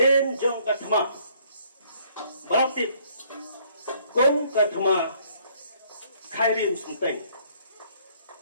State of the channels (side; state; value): both; inverted; correlation -0.63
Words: jong katma berarti kong katma khairim sunteng